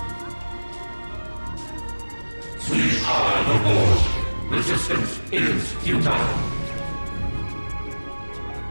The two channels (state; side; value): inverted; both; correlation -1.00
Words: We are the Borg. Resistance is futile.